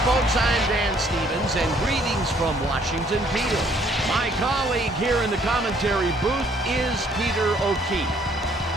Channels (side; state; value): both; normal; correlation 0.63